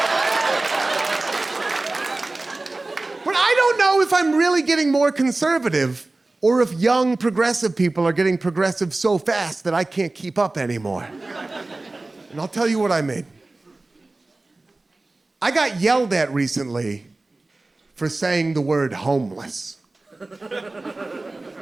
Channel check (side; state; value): left; quieter; 3.1 dB